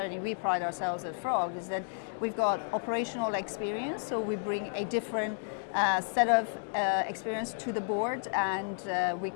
we pride ourselves at Frog is that we've got operational experience, so we bring a different set of experience to the board, and we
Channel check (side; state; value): right; silent; digital silence